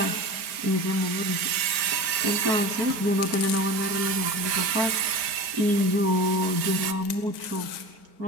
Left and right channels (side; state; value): left; late; 4.4 ms